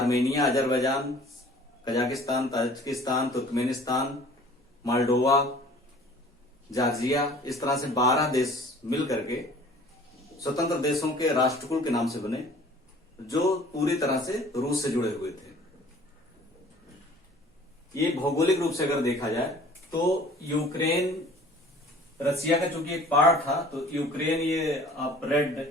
Azerbaijan, Kazakhstan, Tajikistan, Turkmenistan, Moldova, Georgia, इस तरह से 12 देश मिल करके स्वतंत्र देशों के राष्ट्रकुल के नाम से बने, जो पूरी तरह से रूस से जुड़े हुए थे। ये भौगोलिक रूप से अगर देखा जाए तो यूक्रेन रसिया का चूंकि एक पार्ट था, तो यूक्रेन ये आप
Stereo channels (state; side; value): normal; both; correlation 0.50